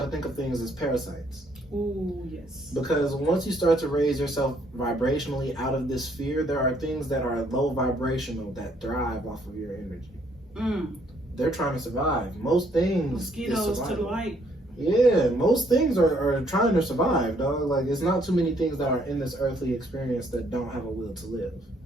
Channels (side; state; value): both; normal; correlation 0.67